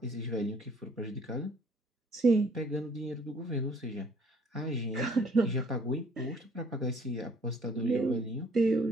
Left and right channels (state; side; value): normal; both; correlation 0.59